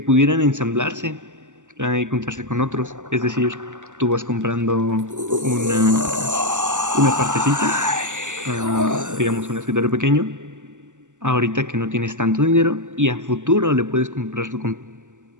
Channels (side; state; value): left; late; 0.86 ms